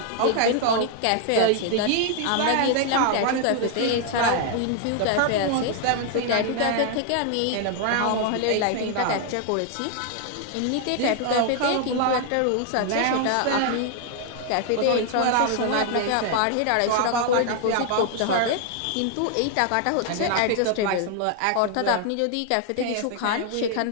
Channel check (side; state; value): both; different; correlation 0.00